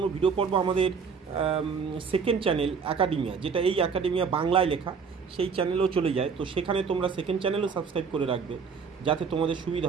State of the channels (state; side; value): quieter; left; 5.8 dB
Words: ভিডিও পড়বো আমাদের সেকেন্ড চ্যানেল অ্যাকাডেমিয়া, যেটা এই অ্যাকাডেমিয়া বাংলায় লেখা, সেই চ্যানেলেও চলে যায়, তো সেখানে তোমরা সেকেন্ড চ্যানেলও সাবস্ক্রাইব করে রাখবে যাতে তোমাদের সুবিধা